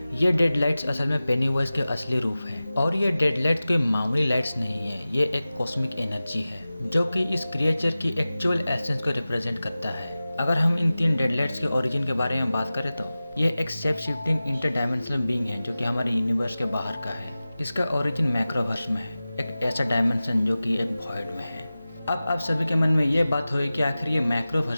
ये डेड लाइट्स असल में पेनीवाइज के असली रूप है और ये डेड लाइट्स कोई मामूली लाइट्स नहीं है, ये एक कॉस्मिक एनर्जी है जो कि इस क्रिएचर की एक्चुअल एसेंस को रिप्रेजेंट करता है। अगर हम इन 3 डेड लाइट्स के ओरिजिन के बारे में बात करें तो ये एक शेप शिफ्टिंग इंटरडायमेंशनल बीइंग है जो कि हमारे यूनिवर्स के बाहर का है। इसका ओरिजिन मैक्रोवर्स में है, एक ऐसा डायमेंशन जो कि एक वॉइड में है। अब आप सभी के मन में ये बात होगी कि आखिर ये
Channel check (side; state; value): both; inverted; correlation -0.96